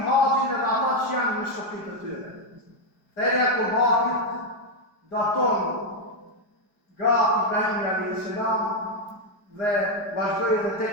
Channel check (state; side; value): late; right; 4.9 ms